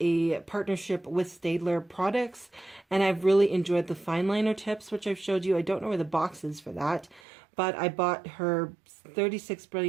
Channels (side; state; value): left; drops out; at 7.2 s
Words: partnership with Staedtler products, and I've really enjoyed the fine liner tips, which I've showed you. I don't know where the box is for that, but I bought her 36